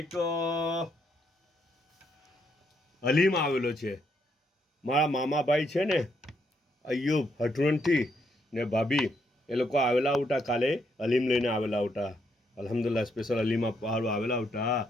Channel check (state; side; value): normal; both; correlation 0.75